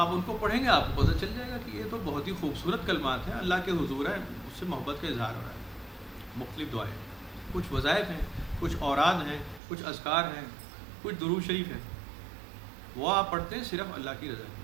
ان کو پڑھیں گے آپ کو پتہ چل جائے گا کہ یہ تو بہت ہی خوبصورت کلمات ہیں، اللہ کے حضور ہے، اس سے محبت کا اظہار ہو رہا ہے۔ مختلف دعائیں، کچھ وظائف ہیں، کچھ اوراد ہیں، کچھ اذکار ہیں، کچھ درود شریف ہیں، وہ آپ پڑھتے ہیں صرف اللہ کی رضا کے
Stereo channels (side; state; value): left; drops out; at 9.6 s